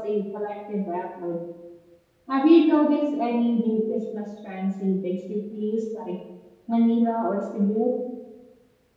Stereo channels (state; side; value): identical; both; correlation 1.00